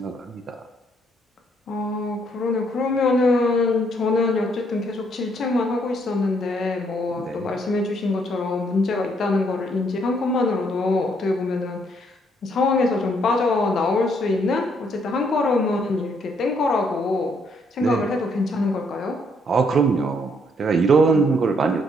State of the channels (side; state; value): both; normal; correlation 0.70